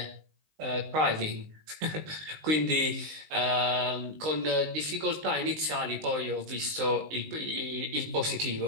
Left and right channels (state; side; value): late; left; 19 ms